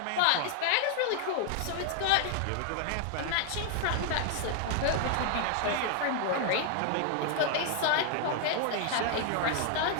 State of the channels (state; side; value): different; both; correlation 0.00